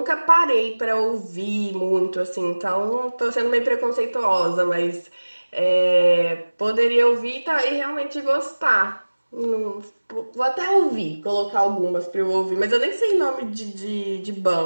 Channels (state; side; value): inverted; both; correlation -1.00